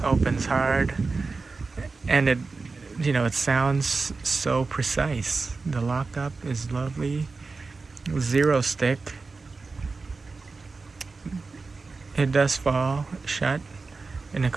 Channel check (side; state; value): left; quieter; 4.1 dB